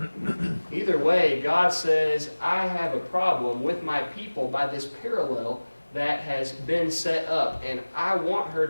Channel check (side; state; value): both; inverted; correlation -1.00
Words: Either way, God says, I have a problem with my people by this parallel that has been set up, and I want her